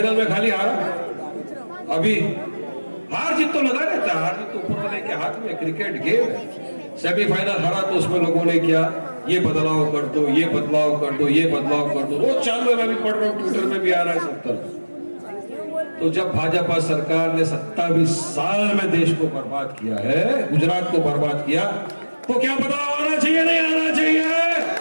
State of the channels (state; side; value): inverted; both; correlation -1.00